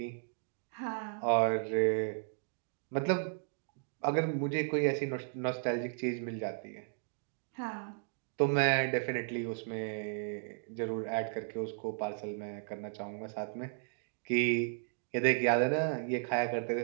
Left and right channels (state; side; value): silent; left; digital silence